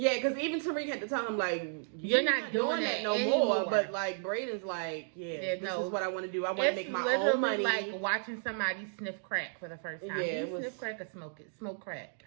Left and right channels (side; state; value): left; silent; digital silence